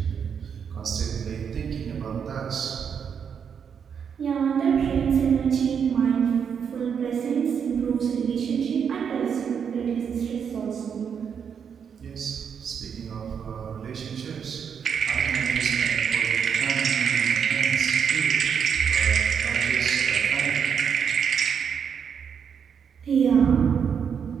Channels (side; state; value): left; quieter; 7.2 dB